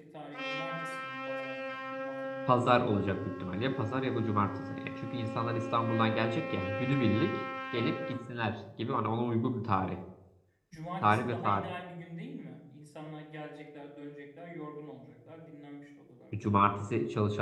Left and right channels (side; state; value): both; identical; correlation 1.00